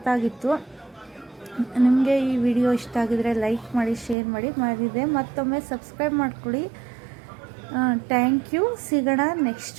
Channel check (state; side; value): drops out; left; at 4.2 s